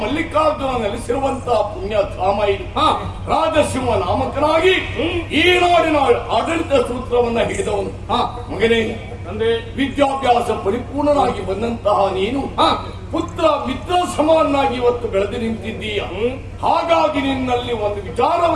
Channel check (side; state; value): both; identical; correlation 1.00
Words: ಮಲ್ಲಿಕಾರ್ಜುನ ನೆಲೆಸಿರುವಂತಹ ಪುಣ್ಯಧಾಮ ಇದು. ರಾಜಸಿಂಹ ನಾಮಕನಾಗಿ ಈ ನಾಡಿನ ಆಡಳಿತ ಸೂತ್ರವನ್ನ ಹಿಡಿದವನು. ಮಗನೇ, ವಿದ್ಯಾಭ್ಯಾಸ ಪರಿಪೂರ್ಣನಾಗಿ ಬಂದಂತಹ ನೀನು ಪುತ್ರ ಮಿತ್ರ ಸಮಾನಾಗಿ ಇವತ್ತು ಬೆಳೆದು ನಿಂತಿದ್ದೀಯ. ಹಾಗಾಗಿ ನಿನ್ನಲ್ಲಿ ಒಂದು